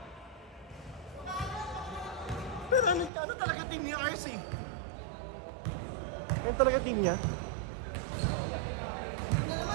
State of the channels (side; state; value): left; drops out; at 3.1 s